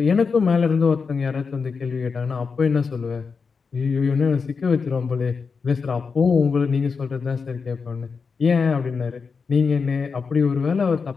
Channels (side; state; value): right; quieter; 5.2 dB